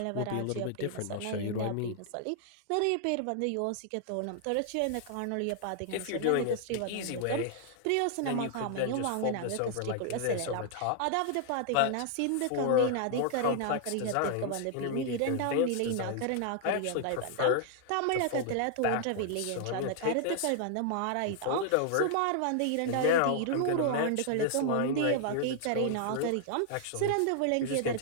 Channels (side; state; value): both; different; correlation 0.00